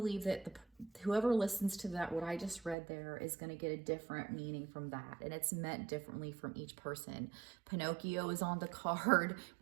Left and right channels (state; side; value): drops out; left; at 2.8 s